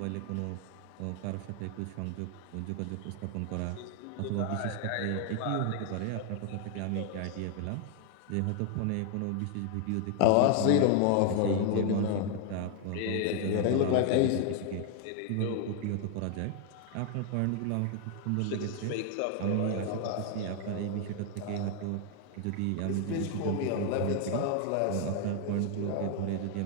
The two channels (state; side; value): different; both; correlation 0.00